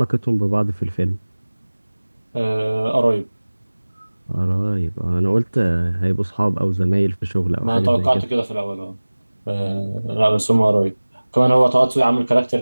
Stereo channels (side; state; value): both; inverted; correlation -1.00